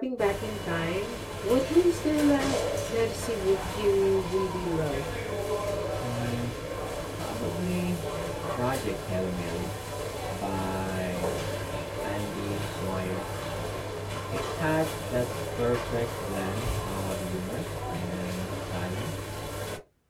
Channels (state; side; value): identical; both; correlation 1.00